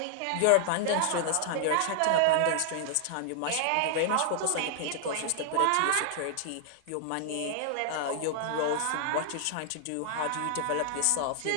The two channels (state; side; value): different; both; correlation -0.01